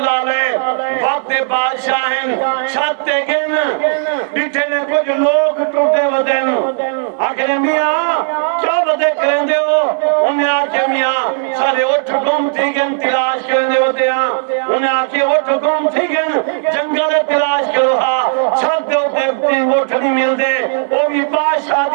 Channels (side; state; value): left; silent; digital silence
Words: علیہ وقت بادشاہن چھت تے گن بیٹھے نے کچھ لوگ ٹوٹے ودن آخر میاں کیا ودے کریں دے ہو انہیں آکے میاں سارے اٹھ گم تھی گن تلاش کرنے ہوتے ہیں انہیں آکے اٹھ گم تھی گن جنگل تلاش کرو ہاں چھت دے ہوتے اٹھ نہیں مل دے وہ بھی بادشاہ